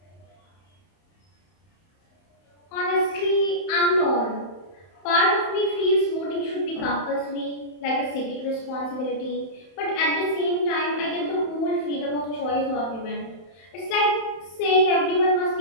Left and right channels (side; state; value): right; late; 31 ms